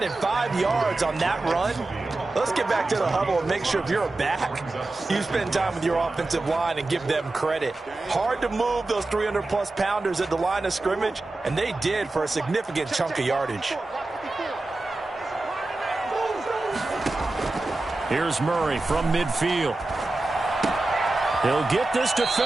5 yards on that run. Let's get back to the huddle and make sure if you're a back, you spend time with your offensive line and give them credit. Hard to move those 300-plus pounders at the line of scrimmage, and they did for a significant chunk of yardage. Here's Murray from midfield. He'll get this to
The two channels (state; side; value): quieter; left; 3.0 dB